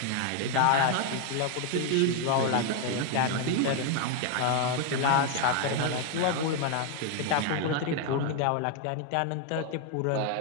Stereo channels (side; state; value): both; different; correlation 0.01